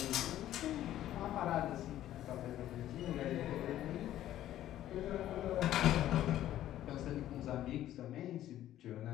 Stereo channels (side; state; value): right; quieter; 12.9 dB